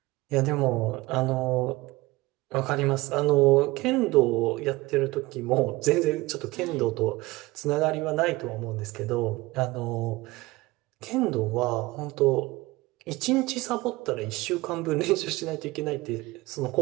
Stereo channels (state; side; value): quieter; left; 20.8 dB